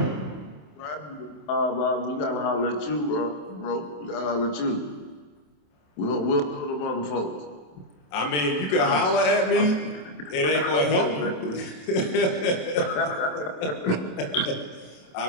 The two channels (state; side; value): late; right; 27 ms